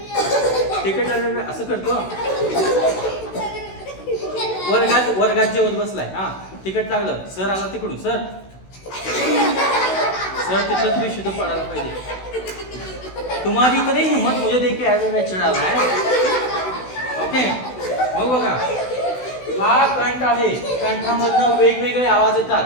तिखट लागलं असं करतो. वर्गात जेवत बसलाय, हा तिखट लागलं, सर आला तिकडून, सर तिथंच विशुद्ध पडायला पाहिजे. तुम्हारी इतनी हिम्मत मुझे देख के ऐसा चढ़ा रहा है. ओके, मग बघा, हा कंठ आहे, कंठामधनं वेगवेगळे आवाज येतात.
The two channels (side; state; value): right; late; 16 ms